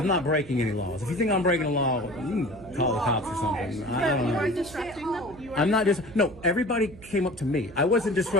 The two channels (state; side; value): noise; right; hum, 19 dB below the sound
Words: not breaking any laws. If you think I'm breaking a law, you can call the cops or something. I But don't you know. are disrupting them. You are I'm not just, no, everybody came up to me. I wasn't